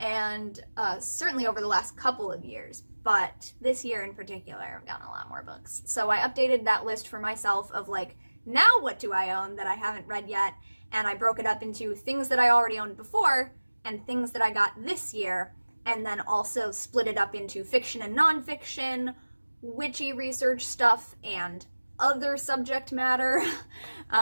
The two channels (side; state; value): both; inverted; correlation -1.00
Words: certainly over the last couple of years, but this year in particular, I've gotten a lot more books. So I updated that list for myself of, like, now what do I own that I haven't read yet? And I broke it up into things that I already owned before and things that I got this year, and then also split it up into fiction and nonfiction, witchy research stuff and other subject matter.